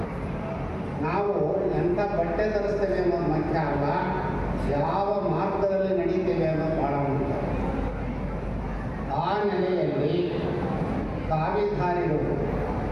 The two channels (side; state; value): both; identical; correlation 1.00